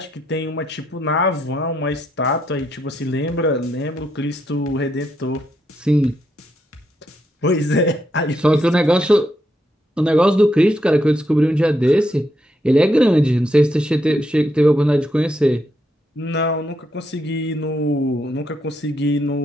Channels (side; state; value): both; normal; correlation 0.79